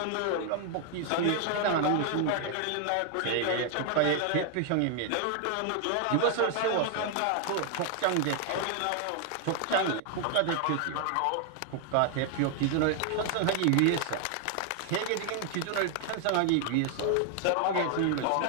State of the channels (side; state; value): both; different; correlation 0.00